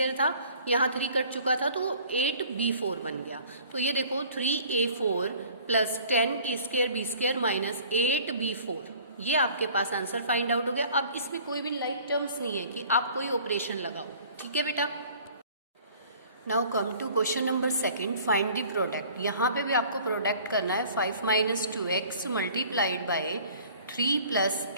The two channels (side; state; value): both; inverted; correlation -0.50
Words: था, यहाँ 3 कट चुका था तो 8b4 बन गया। तो ये देखो 3a4 plus 10a square b square minus 8b4, ये आपके पास आंसर फाइंड आउट हो गया। अब इसमें कोई भी लाइक टर्म्स नहीं है कि आप कोई ऑपरेशन लगाओ, ठीक है बेटा। Now come to question number second, find the product. यहाँ पे भी आपको प्रोडक्ट करना है 5 minus 2x multiplied by 3 plus